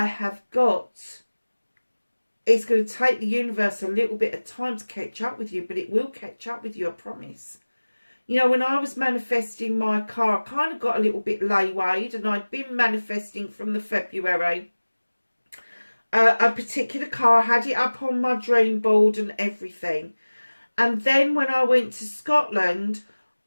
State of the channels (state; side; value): inverted; both; correlation -1.00